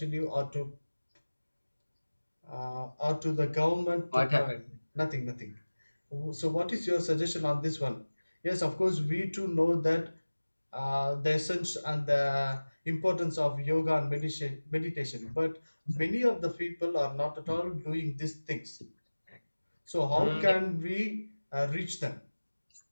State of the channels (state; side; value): inverted; both; correlation -1.00